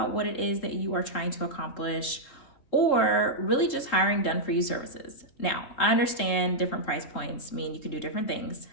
what it is that you are trying to accomplish, or really just hiring done-for-you services. Now, I understand different price points mean you can do different things.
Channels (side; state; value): right; late; 3.7 ms